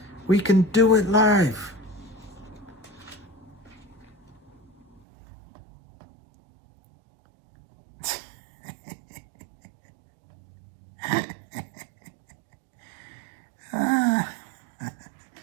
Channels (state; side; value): drops out; left; at 5.0 s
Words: We can do it live.